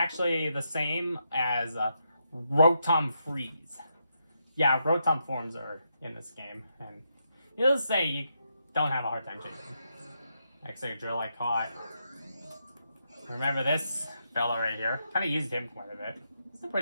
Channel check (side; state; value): both; inverted; correlation -0.81